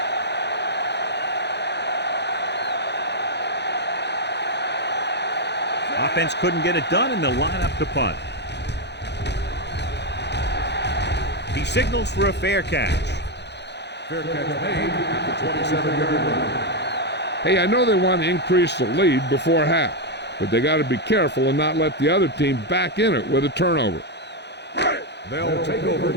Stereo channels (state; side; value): late; right; 0.50 ms